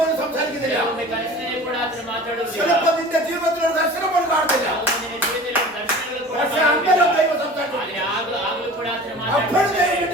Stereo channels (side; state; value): both; normal; correlation 0.40